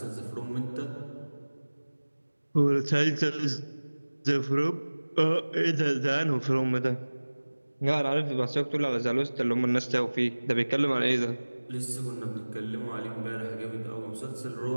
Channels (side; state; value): both; inverted; correlation -1.00